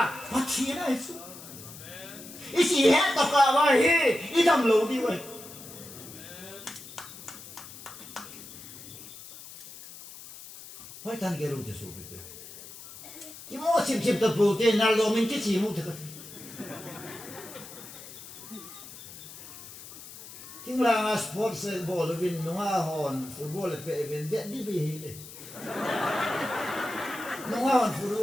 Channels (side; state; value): left; noise; hiss, 15 dB below the sound